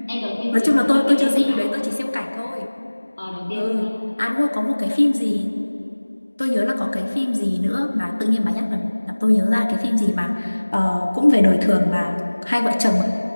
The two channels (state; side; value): inverted; both; correlation -1.00